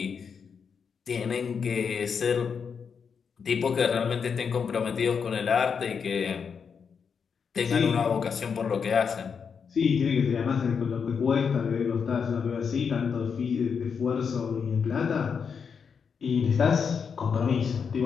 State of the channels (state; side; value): quieter; right; 6.3 dB